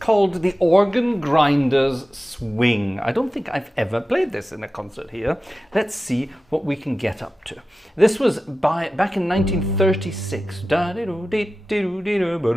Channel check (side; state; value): both; normal; correlation 0.94